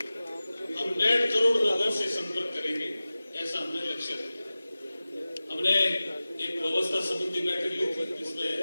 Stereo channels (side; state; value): both; inverted; correlation -0.96